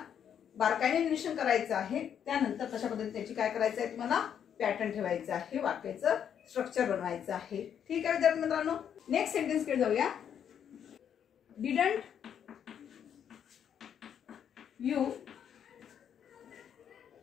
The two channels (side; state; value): right; quieter; 8.7 dB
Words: बारकाईने निरीक्षण करायचं आहे. त्यानंतर तशा पद्धतीने त्याची काय करायचं आहे, तुम्हाला पॅटर्न ठेवायचं आहे, वाक्याचं स्ट्रक्चर बनवायचं आहे. ठीक आहे विद्यार्थी मित्रांनो. नेक्स्ट सेंटेन्स कडे जाऊया. Didn't you